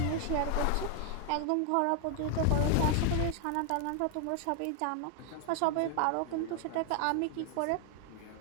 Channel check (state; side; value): different; both; correlation 0.00